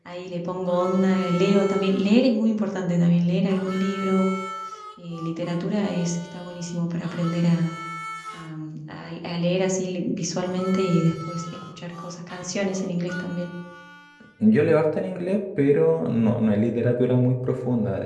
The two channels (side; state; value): both; identical; correlation 1.00